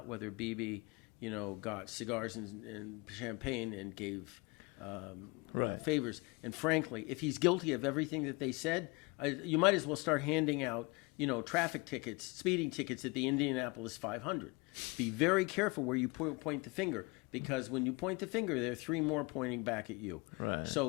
whether Bibi, got cigars and champagne and gave favors. And frankly, if he's guilty of everything that they said, you might as well start handing out, traffic tickets, speeding tickets at the Indianapolis 500. Be very careful where you point the finger, because when you point the finger, there are three more pointing back at you. Right.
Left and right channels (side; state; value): right; quieter; 26.9 dB